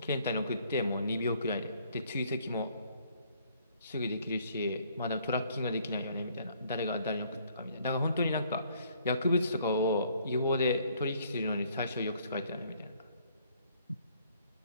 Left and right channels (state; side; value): inverted; both; correlation -0.63